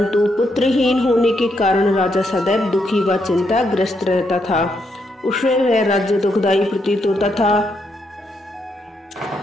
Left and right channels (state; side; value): normal; both; correlation 0.78